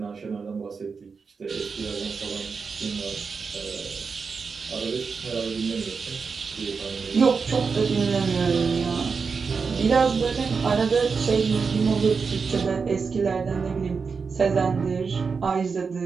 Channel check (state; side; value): quieter; left; 5.2 dB